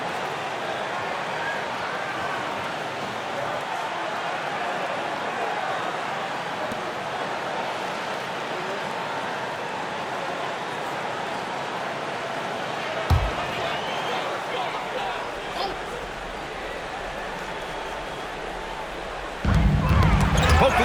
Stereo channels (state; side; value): identical; both; correlation 1.00